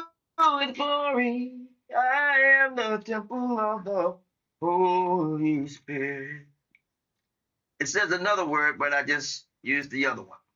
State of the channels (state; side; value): identical; both; correlation 1.00